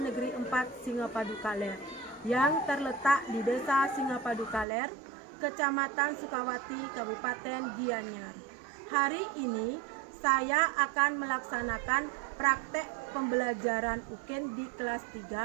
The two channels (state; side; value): drops out; left; at 4.7 s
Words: 4 Singapadu Kaler yang terletak di Desa Singapadu Kaler, Kecamatan Sukawati, Kabupaten Gianyar. Hari ini saya akan melaksanakan praktek pembelajaran UKIN di kelas